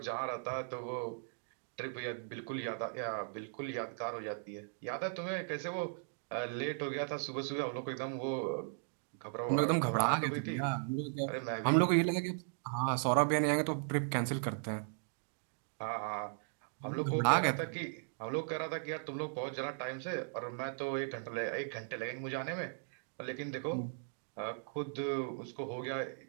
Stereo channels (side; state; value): left; silent; digital silence